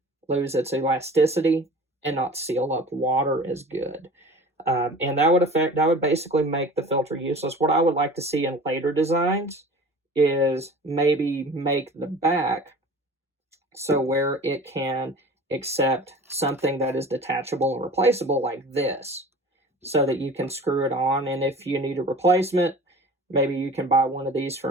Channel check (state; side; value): normal; both; correlation 0.41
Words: lose its elasticity and not seal up water as good. And that would basically make the filter useless. What I would like to see in later designs is maybe make the back so where it can accept something that is detachable and replaceable like this, so that you can screw it on, and if you need a replacement, maybe you can buy one of these